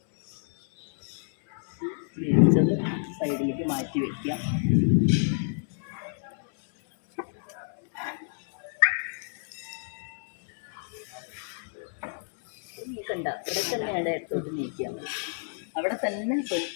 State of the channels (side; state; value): right; silent; 59 dB below the other